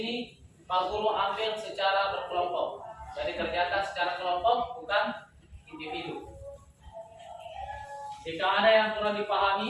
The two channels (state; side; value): identical; both; correlation 1.00